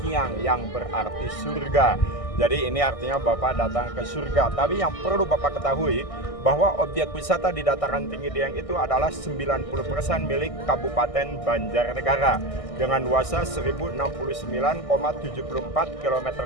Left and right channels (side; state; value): right; late; 1.6 ms